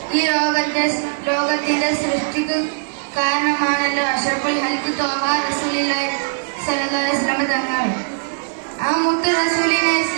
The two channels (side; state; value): left; silent; digital silence